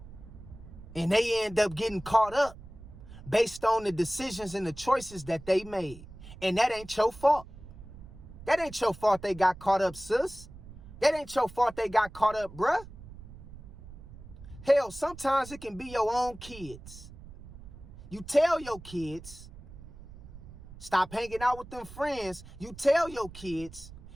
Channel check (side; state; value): right; noise; rumble, 16 dB below the sound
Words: And they end up getting caught up based on the decisions and the choices that they made. And that ain't your fault. That ain't your fault they got caught up, sis. That ain't your fault they got caught up, bruh. Hell, sometimes it can be your own kids. You tell your kids, stop hanging out with them friends. You tell your kids,